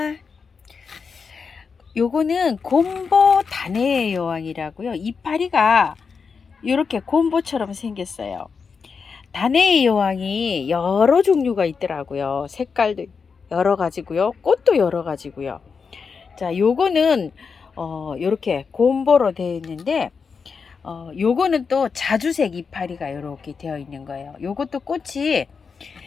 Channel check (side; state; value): right; quieter; 5.5 dB